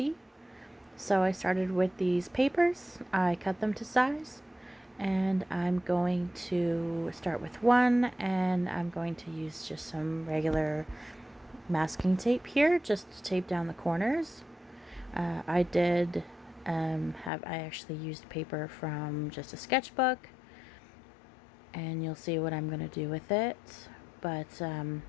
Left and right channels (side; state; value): right; drops out; at 17.3 s